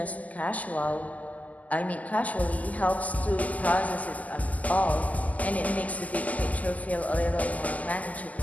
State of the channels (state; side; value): late; right; 0.076 ms